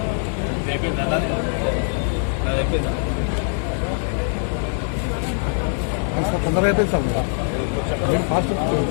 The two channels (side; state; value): right; silent; digital silence